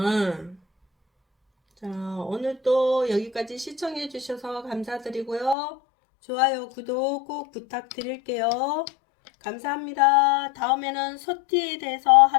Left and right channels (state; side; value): drops out; right; at 5.6 s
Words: 자, 오늘 또 여기까지 시청해 주셔서 감사드리고요. 좋아요, 구독 꼭 부탁드릴게요. 감사합니다. 다음에는 소띠에 대해서